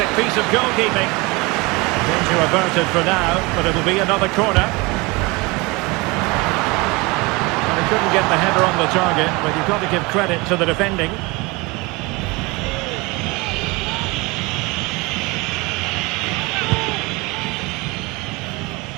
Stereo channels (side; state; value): left; quieter; 25.2 dB